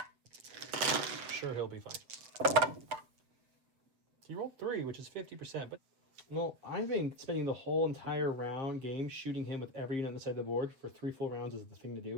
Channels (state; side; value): late; left; 7.8 ms